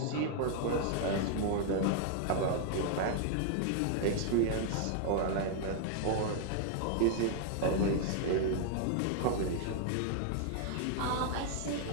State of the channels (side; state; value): both; different; correlation 0.00